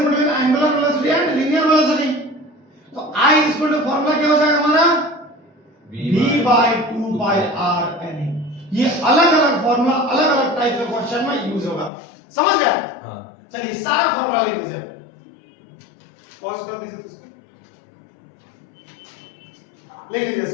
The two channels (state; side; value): drops out; right; at 11.9 s